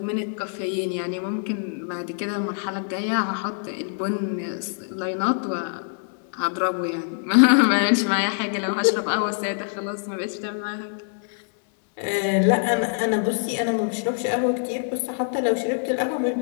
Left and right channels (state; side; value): silent; right; 62 dB below the other